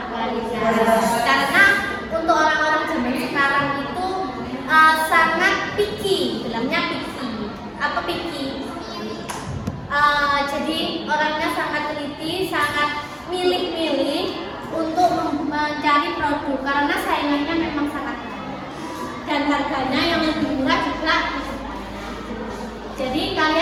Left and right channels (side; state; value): both; identical; correlation 1.00